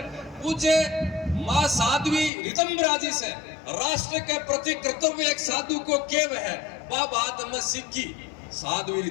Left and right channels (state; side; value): drops out; right; at 2.3 s